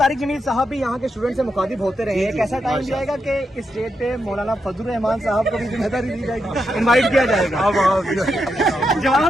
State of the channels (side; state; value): both; normal; correlation 0.84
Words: जमील साहब भी यहाँ के स्टूडेंट से मुखातिब होते रहे हैं, कैसा टाइम जाएगा कि इस स्टेज पे मौलाना फजल रहमान साहब को भी जिम्मेदारी दी जाएगी, इनवाइट किया जाएगा? अब